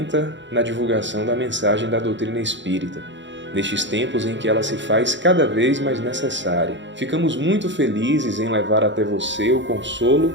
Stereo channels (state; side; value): late; left; 0.53 ms